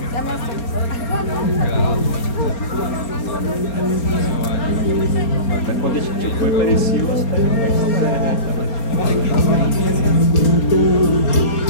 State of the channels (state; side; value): late; right; 4.4 ms